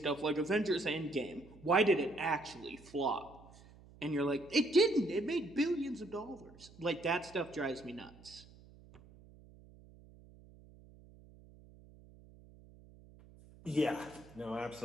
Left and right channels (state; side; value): noise; right; hum, 22 dB below the sound